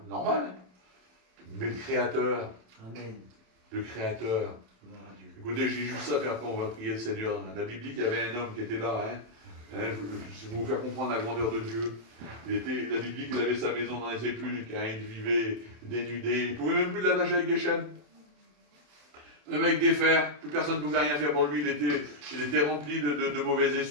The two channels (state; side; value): late; left; 27 ms